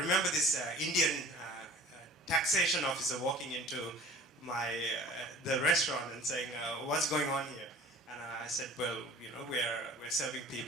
this Indian taxation officer walking into the restaurant and saying, "What's going on here?" And I said, "Well, we're serving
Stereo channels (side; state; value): both; normal; correlation 0.47